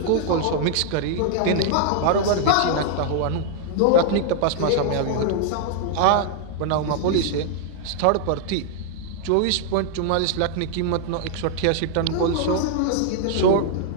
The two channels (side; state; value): both; different; correlation 0.00